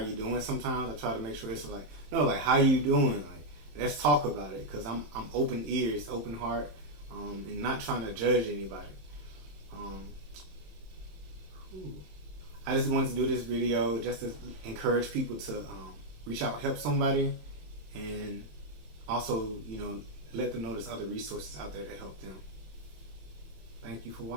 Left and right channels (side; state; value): left; late; 27 ms